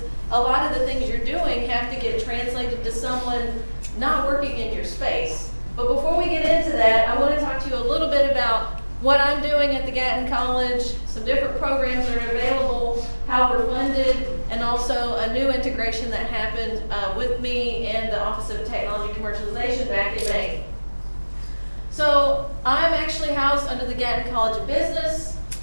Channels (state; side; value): inverted; both; correlation -1.00